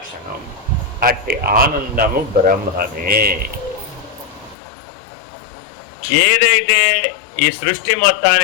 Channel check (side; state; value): right; drops out; at 4.5 s